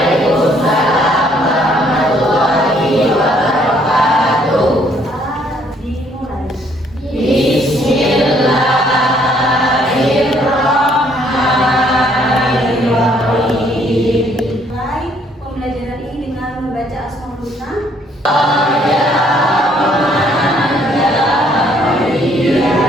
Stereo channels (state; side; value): normal; both; correlation 0.65